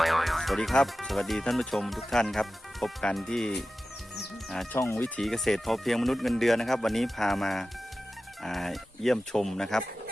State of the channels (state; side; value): normal; both; correlation 0.94